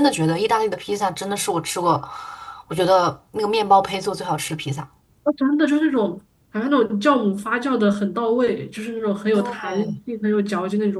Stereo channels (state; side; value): identical; both; correlation 1.00